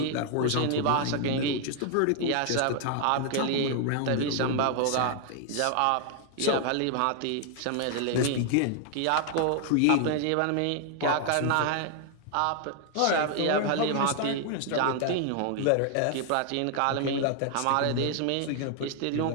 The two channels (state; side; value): different; both; correlation 0.00